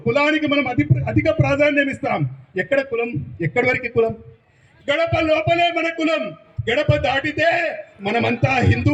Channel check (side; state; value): both; identical; correlation 1.00